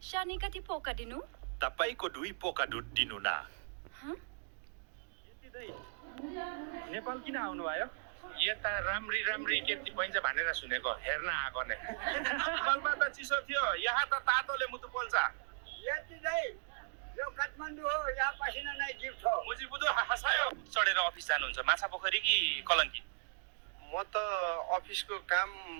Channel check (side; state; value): left; silent; digital silence